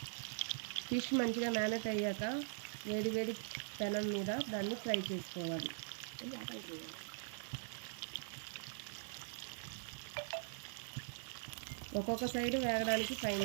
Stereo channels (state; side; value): silent; left; digital silence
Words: ఫిష్ మంచిగా మ్యారినేట్ అయ్యాక వేడి వేడి పెనం మీద దాన్ని ఫ్రై చేసుకోవాలి. ఒక్కొక్క సైడ్ వేగడానికి 5